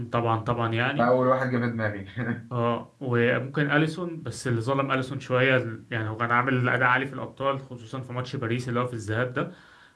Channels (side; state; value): both; identical; correlation 1.00